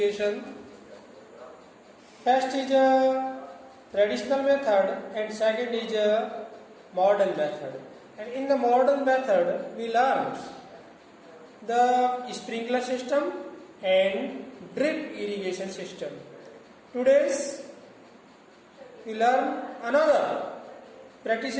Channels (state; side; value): identical; both; correlation 1.00